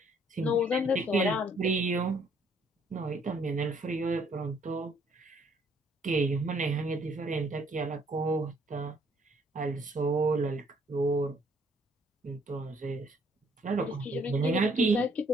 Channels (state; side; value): normal; both; correlation 0.65